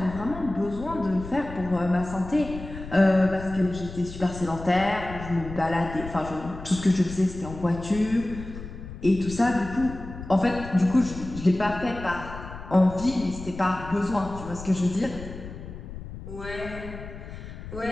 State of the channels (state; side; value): noise; left; rumble, 12 dB below the sound